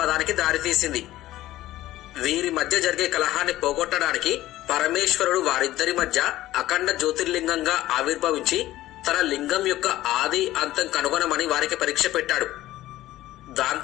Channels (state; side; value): quieter; right; 15.3 dB